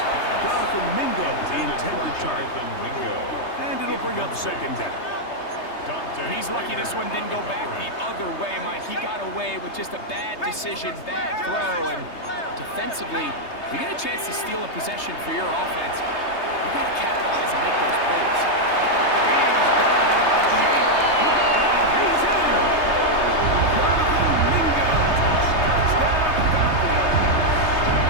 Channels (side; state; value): right; late; 3.3 ms